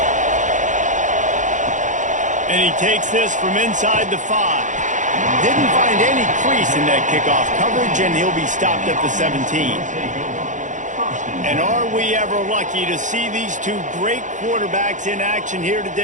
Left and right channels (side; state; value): left; late; 0.36 ms